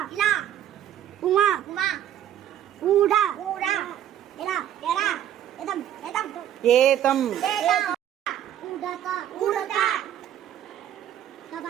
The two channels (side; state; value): left; quieter; 10.8 dB